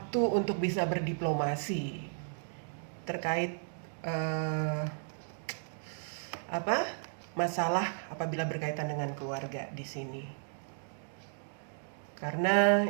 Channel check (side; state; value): left; silent; digital silence